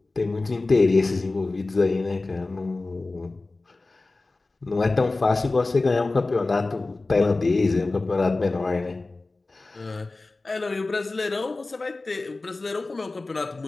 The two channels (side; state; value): right; quieter; 3.3 dB